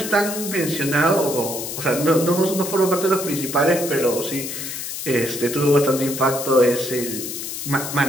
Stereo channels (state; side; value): noise; left; hiss, 6 dB below the sound